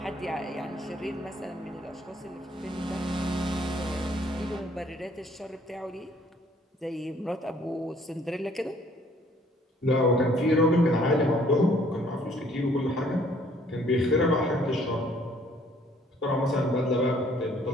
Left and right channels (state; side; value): normal; both; correlation 0.61